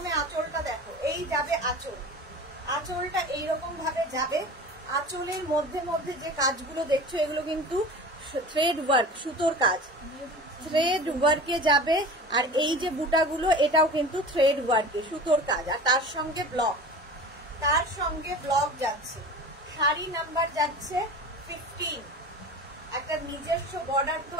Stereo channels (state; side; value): normal; both; correlation 0.36